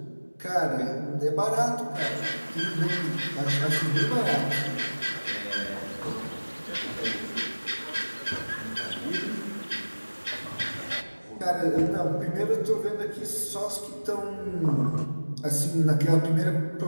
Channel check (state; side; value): inverted; both; correlation -1.00